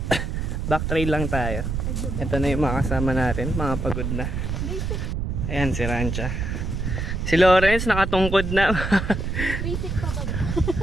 Back trail lang tayo. Ito na yung mga kasama natin, mga pagod na. Ayan si Rancha. Si Lawrence nakatungkod na. Basic pa ba?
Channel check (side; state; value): right; noise; rumble, 2 dB below the sound